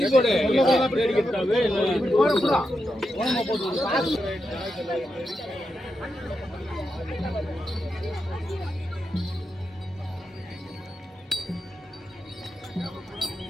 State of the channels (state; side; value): normal; both; correlation 0.86